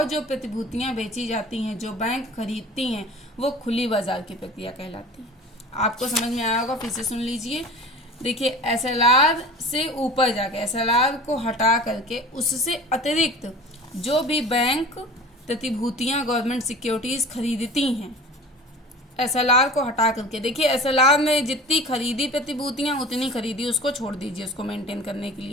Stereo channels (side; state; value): both; normal; correlation 0.39